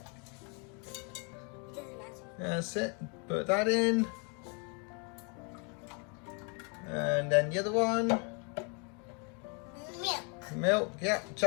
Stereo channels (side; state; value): right; quieter; 35.8 dB